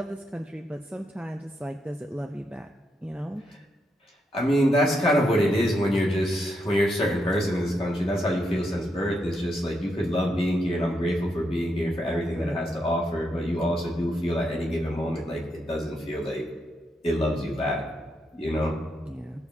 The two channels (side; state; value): both; normal; correlation 0.81